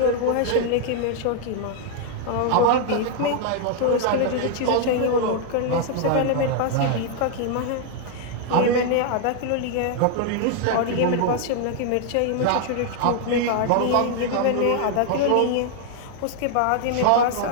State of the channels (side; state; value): both; different; correlation 0.00